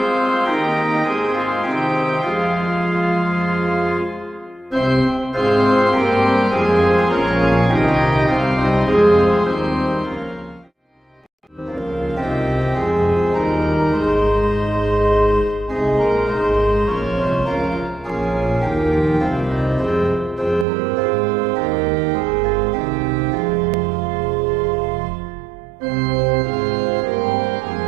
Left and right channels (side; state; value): left; drops out; at 20.7 s